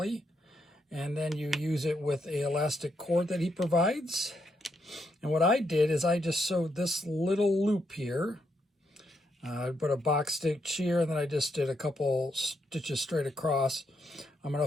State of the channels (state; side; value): normal; both; correlation 0.79